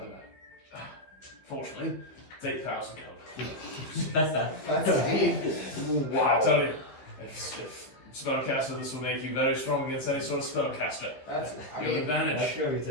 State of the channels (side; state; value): right; late; 15 ms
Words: magic. Fortunately, it's 8,000 gold. That's deep. Wow. I tell you, if spellcaster, this will make you very strong against any sort of spellcaster. That's. I You have mean, advantage. sure he